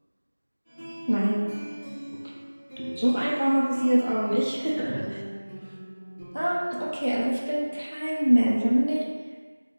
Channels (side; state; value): both; inverted; correlation -1.00